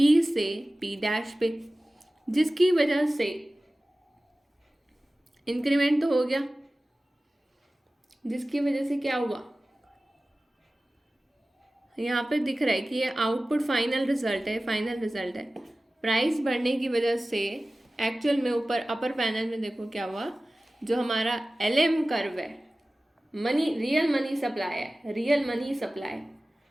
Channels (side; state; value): both; normal; correlation 0.97